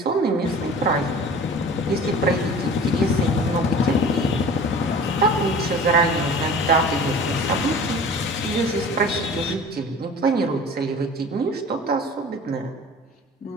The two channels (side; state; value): both; normal; correlation 0.42